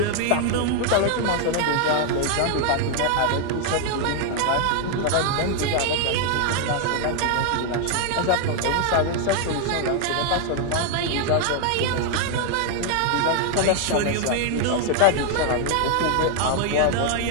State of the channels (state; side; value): different; both; correlation 0.00